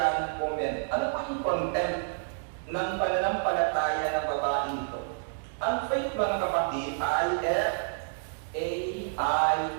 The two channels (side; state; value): left; silent; digital silence